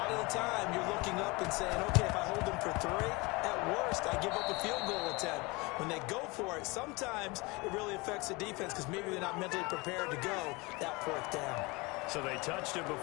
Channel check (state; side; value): quieter; right; 25.3 dB